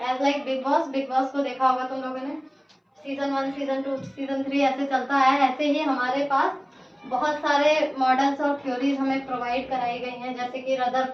like Bigg Boss. Bigg Boss को देखा होगा तुम लोगों ने. सीजन 1, सीजन 2, सीजन 3 ऐसे चलता है. ऐसे ही हमारे पास बहुत सारे मॉडल्स और थ्योरीज हमें प्रोवाइड कराई गई हैं, जैसे कि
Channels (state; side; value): identical; both; correlation 1.00